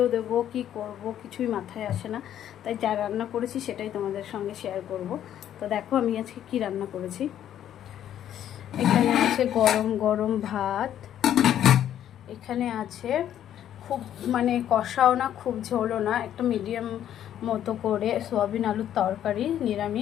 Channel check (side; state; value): right; quieter; 10.8 dB